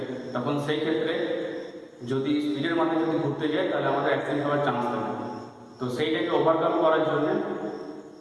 তখন সেই ক্ষেত্রে যদি স্পিডের মাধ্যমে যদি ঘুরতে যাই তাহলে আমাদের অ্যাক্সিডেন্ট হওয়ার চান্স থাকে। তো সেইটাকে ওভারকাম করার জন্য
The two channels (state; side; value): identical; both; correlation 1.00